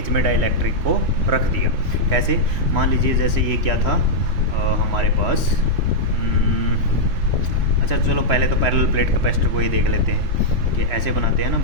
में डाइलेक्ट्रिक को रख दिया। कैसे, मान लीजिए जैसे ये क्या था हमारे पास, अच्छा चलो पहले तो पैरेलल प्लेट कैपेसिटर को ही देख लेते हैं कि ऐसे बनाते हैं ना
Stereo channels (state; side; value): late; left; 3.1 ms